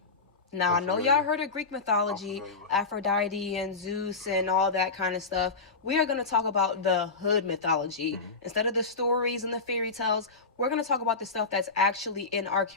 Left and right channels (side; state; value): right; quieter; 4.1 dB